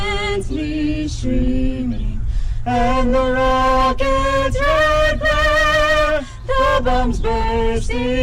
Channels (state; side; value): identical; both; correlation 1.00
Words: streaming, and the rocket's red glare, the bombs